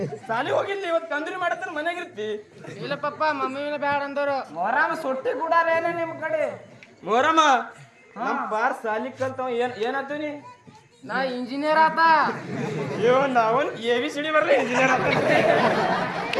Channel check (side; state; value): both; identical; correlation 1.00